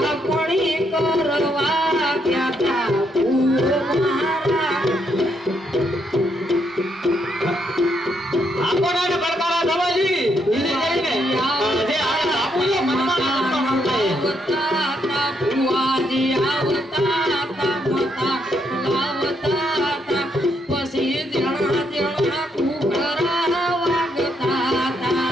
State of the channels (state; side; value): normal; both; correlation 0.76